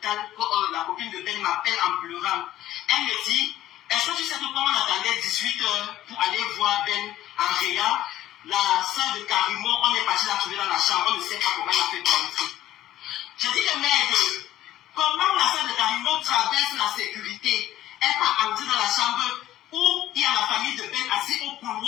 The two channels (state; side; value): quieter; right; 13.8 dB